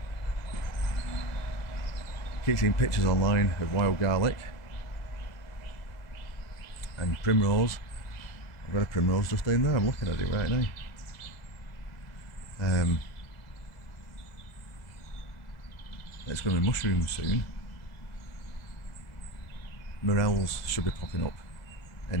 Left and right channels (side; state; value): right; late; 2.0 ms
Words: Keep seeing pictures online of wild garlic and primrose. I've got a primrose just down there, I'm looking at it right now. It's going to be mushrooms soon. Morels should be popping up